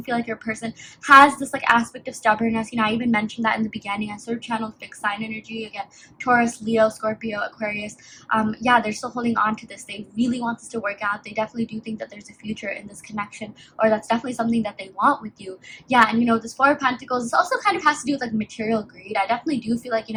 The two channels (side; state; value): both; identical; correlation 1.00